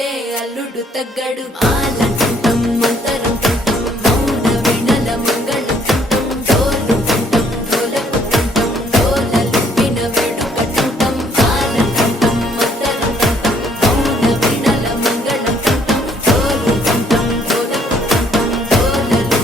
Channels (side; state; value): both; normal; correlation 0.65